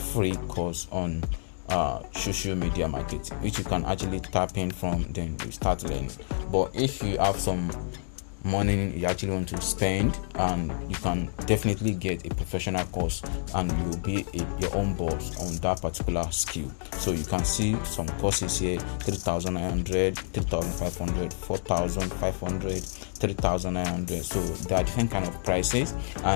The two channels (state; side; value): silent; right; digital silence